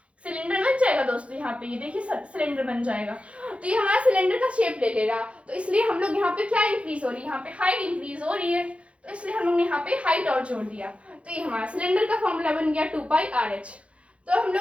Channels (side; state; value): left; late; 0.062 ms